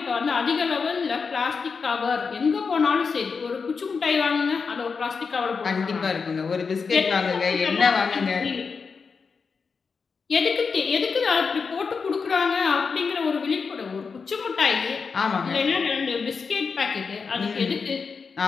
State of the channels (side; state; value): right; quieter; 5.2 dB